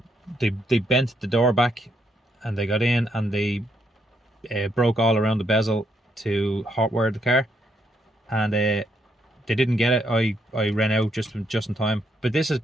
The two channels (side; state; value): both; normal; correlation 0.76